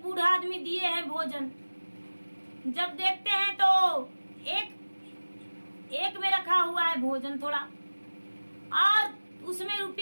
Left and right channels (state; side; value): inverted; both; correlation -1.00